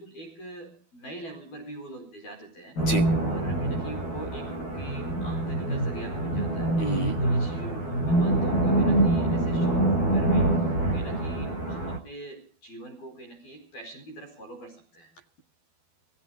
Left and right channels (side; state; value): right; late; 12 ms